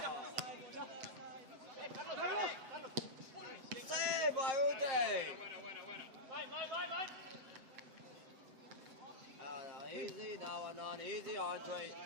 Save by Uday. Easy now and on. Easy, Andre.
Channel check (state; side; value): late; left; 7.8 ms